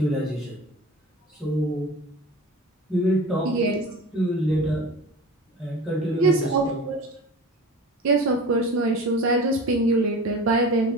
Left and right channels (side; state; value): both; normal; correlation 0.36